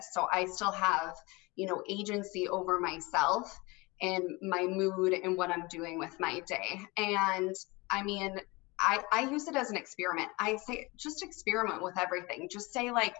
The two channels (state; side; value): quieter; right; 24.7 dB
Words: So I still have, agency over myself and my mood and what I'm doing with my day. And I mean, I use it as an experiment. I say, just experiment with everything. Just say, like,